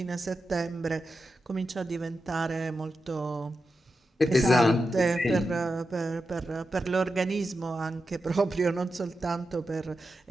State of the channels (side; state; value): both; normal; correlation 0.89